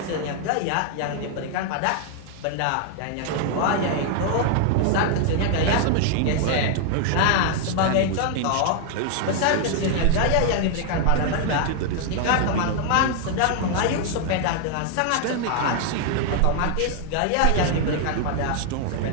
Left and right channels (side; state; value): both; different; correlation 0.00